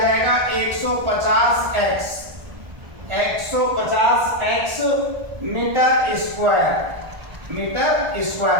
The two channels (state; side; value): late; left; 1.4 ms